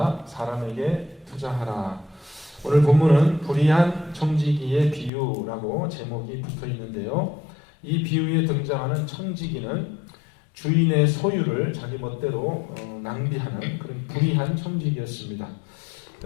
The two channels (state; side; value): drops out; right; at 5.1 s